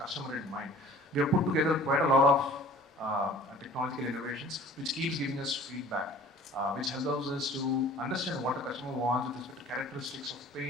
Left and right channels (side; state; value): both; normal; correlation 0.48